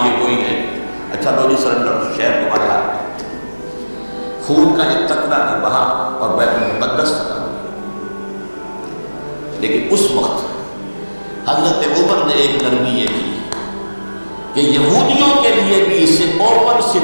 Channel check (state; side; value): inverted; both; correlation -1.00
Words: یہ کوئی ہے، اچھا تو جی سرنڈر، شہر تمہارے ہاتھ میں، خون کا ایک قطرہ نہیں بہا اور بیت المقدس فتح ہو گیا۔ لیکن اس وقت حضرت عمر نے ایک نرمی یہ کی کہ یہودیوں کے لیے بھی اسے اوپن